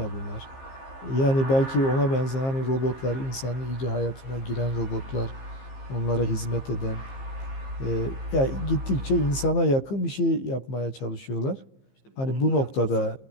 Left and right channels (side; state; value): right; late; 15 ms